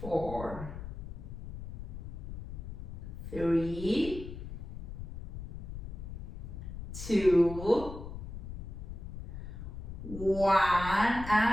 4. 3. 2. 1.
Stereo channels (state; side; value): noise; left; rumble, 9 dB below the sound